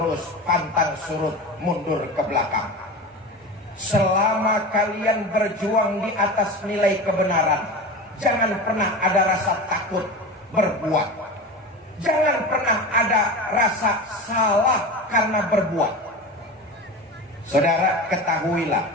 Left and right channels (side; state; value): both; normal; correlation 0.28